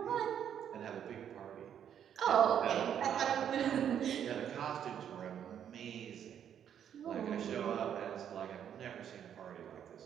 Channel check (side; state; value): left; quieter; 9.1 dB